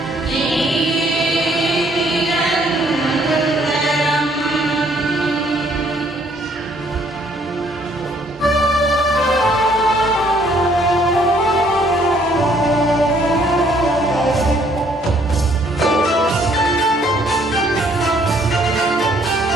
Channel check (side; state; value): both; normal; correlation 0.64